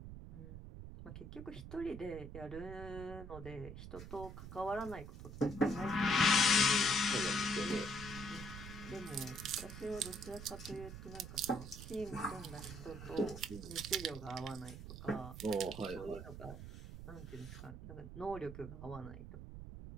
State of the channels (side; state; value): right; noise; rumble, 10 dB below the sound